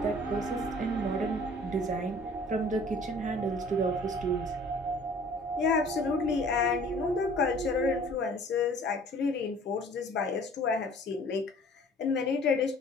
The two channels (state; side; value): normal; both; correlation 0.51